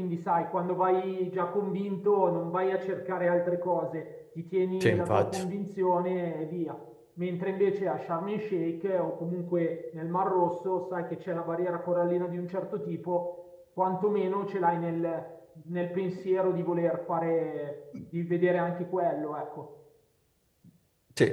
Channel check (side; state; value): both; identical; correlation 1.00